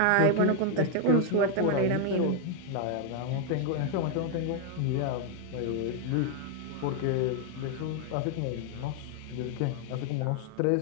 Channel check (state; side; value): different; both; correlation 0.00